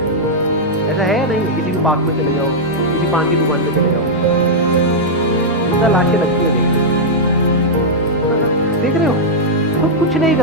ऐसा है या नहीं? किसी भी पार्क में चले जाओ, किसी पान की दुकान पे चले जाओ, जितना लाशें लगती है देख रहे हो, खुद कुछ नहीं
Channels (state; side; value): normal; both; correlation -0.06